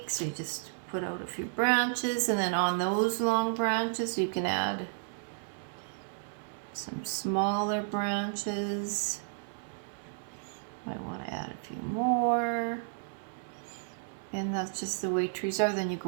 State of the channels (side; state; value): left; silent; 56 dB below the other